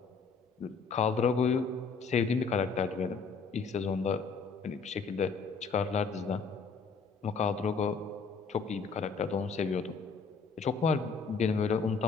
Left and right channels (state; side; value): quieter; right; 5.0 dB